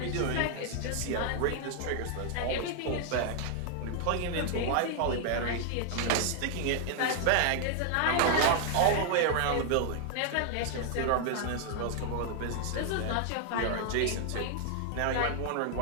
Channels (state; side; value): different; both; correlation 0.00